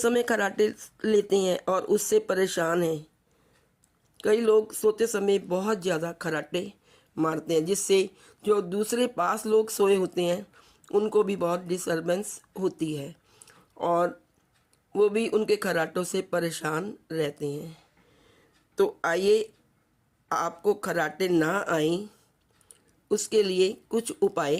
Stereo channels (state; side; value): identical; both; correlation 1.00